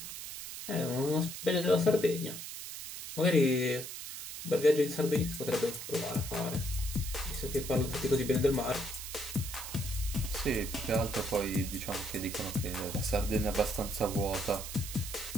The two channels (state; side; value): noise; right; hiss, 8 dB below the sound